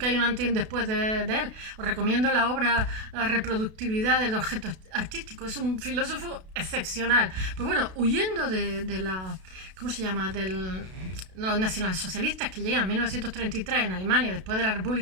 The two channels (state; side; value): late; left; 32 ms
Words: hay un antes y un después de él. Os recomiendo la obra La reproductibilidad del objeto artístico, es un filósofo excepcional. Pues bueno, huyendo de la, ¿cómo se llama?, de los nacionalsocialistas que llegan en 1933 en Alemania después de la